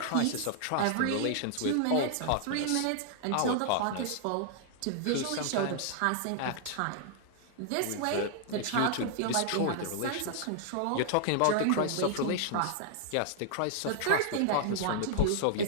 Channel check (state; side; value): different; both; correlation -0.01